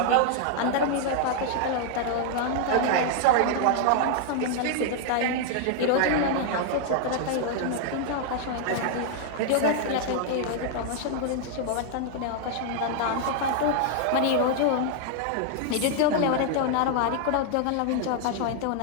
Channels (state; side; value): different; both; correlation -0.01